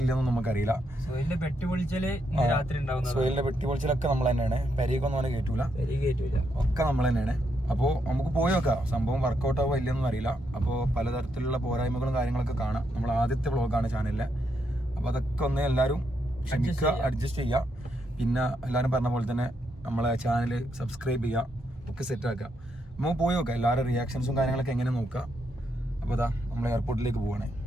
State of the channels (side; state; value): both; normal; correlation 0.79